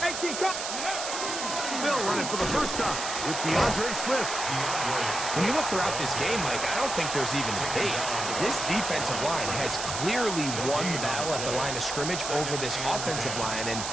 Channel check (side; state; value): right; noise; hiss, 4 dB below the sound